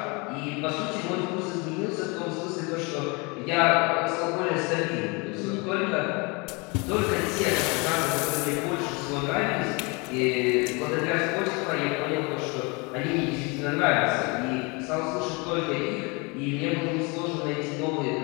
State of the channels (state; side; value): quieter; right; 29.0 dB